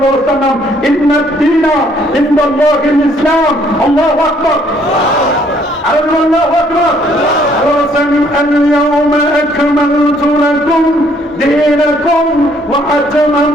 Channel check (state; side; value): normal; both; correlation 0.65